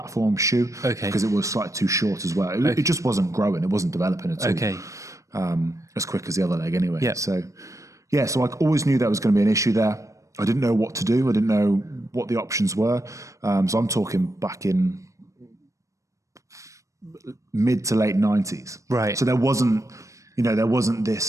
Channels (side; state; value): left; late; 0.15 ms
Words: shoe. Okay. Because it was slightly too short as well. It just wasn't growing. It wasn't developing at all. Okay. As quick as the other leg anyway. Yeah. So I always knew there was going to be an issue there. I didn't know what to do. I didn't know what the options were. So I'm talking back in mid to late 90s. Right. So there wasn't